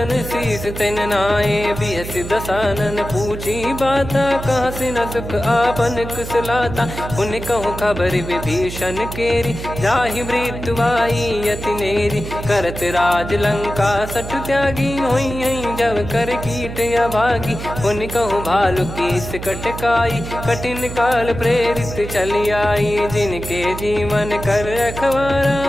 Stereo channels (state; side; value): noise; right; hum, 9 dB below the sound